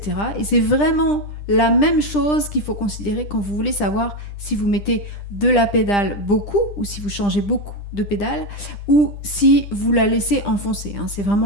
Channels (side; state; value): right; late; 10 ms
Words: Et c'est vraiment la même chose qu'il faut considérer quand vous voulez savoir si vous mettez de la pédale beaucoup ou si vous changez beaucoup de pédale ou si vous la laissez enfoncer. C'est